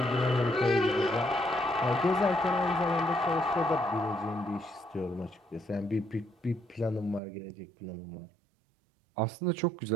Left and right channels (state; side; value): drops out; left; at 7.2 s